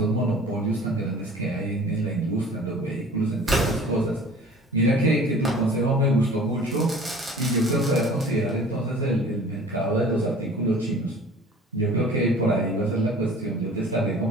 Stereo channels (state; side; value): normal; both; correlation 0.46